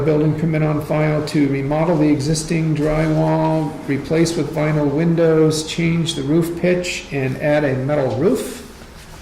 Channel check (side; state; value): both; identical; correlation 1.00